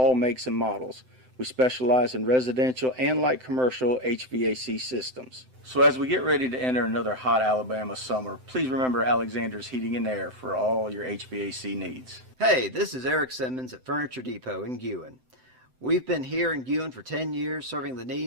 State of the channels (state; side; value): late; left; 7.8 ms